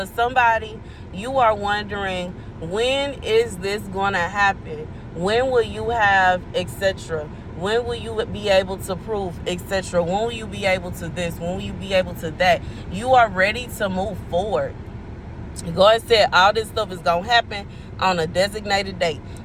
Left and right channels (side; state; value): both; identical; correlation 1.00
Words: somebody, you are wondering, when is this going to happen? When will you have, etc.? When will you be able to prove, etc.? When will you be able to this? When will you be able to that? You are ready to move forward. God said all this stuff is going to happen on a designated date.